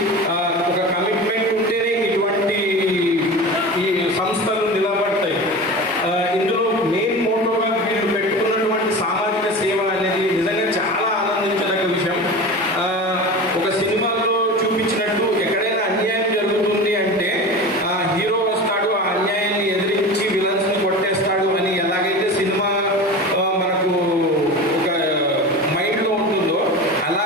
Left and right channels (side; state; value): both; normal; correlation 0.31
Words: ఒక కమిట్మెంట్ ఉంటేనే ఇటువంటి ఈ సంస్థలు నిలబడతాయి. ఇందులో మెయిన్ మోటోగా వీళ్ళు పెట్టుకున్నటువంటి సామాజిక సేవ అనేది నిజంగా చాలా ఆనందించదగ్గ విషయం. ఒక సినిమాలో చూపించినట్టు ఎక్కడైనా అన్యాయం జరుగుతుంది అంటే హీరో వస్తాడు, ఆ అన్యాయాన్ని ఎదిరించి విలన్స్ ని కొట్టేస్తాడు అని ఎలాగైతే సినిమా మనకు ఒక మైండ్ లో ఉంటుందో